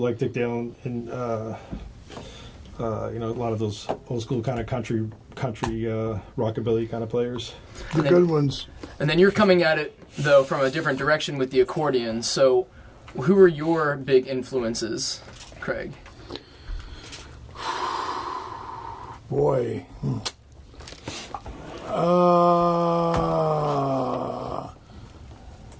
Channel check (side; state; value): both; identical; correlation 1.00